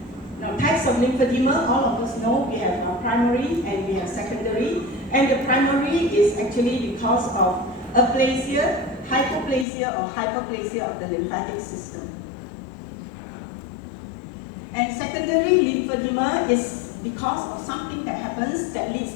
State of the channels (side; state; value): right; drops out; at 9.7 s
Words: Now, types of lymphedema, all of us know we have primary and we have secondary. And the primary is actually because of aplasia, hypoplasia or hyperplasia of the lymphatic system. And secondary lymphedema is because of something that happens that leads